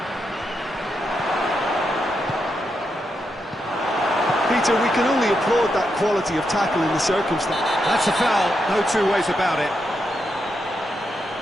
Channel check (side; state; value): both; normal; correlation 0.83